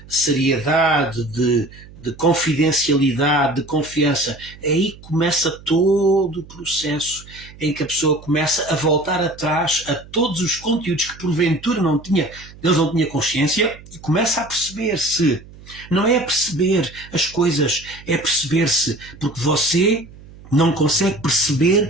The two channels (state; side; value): noise; right; hum, 20 dB below the sound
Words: seriedade, de confidencialidade, de confiança. Aí começa todo o processo em que a pessoa começa a voltar atrás a todos os conteúdos que porventura Deus não tinha consciência e começa a perceber-se. Não é perceber as coisas, é perceber-se, porque você não consegue